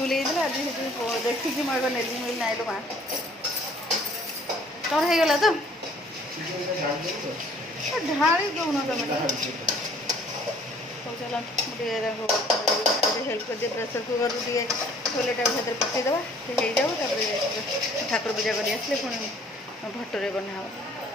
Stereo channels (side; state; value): both; normal; correlation 0.56